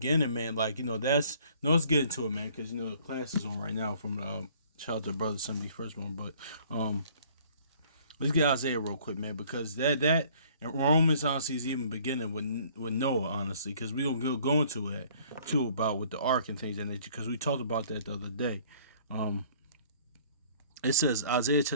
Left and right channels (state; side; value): inverted; both; correlation -0.56